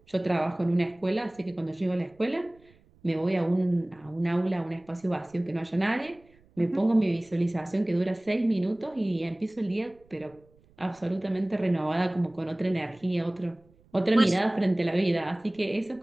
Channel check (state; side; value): noise; right; rumble, 30 dB below the sound